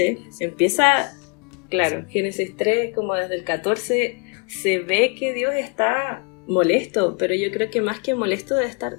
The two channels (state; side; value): quieter; right; 34.1 dB